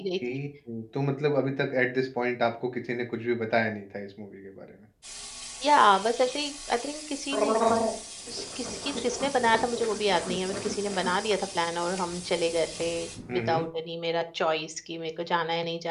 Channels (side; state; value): both; identical; correlation 1.00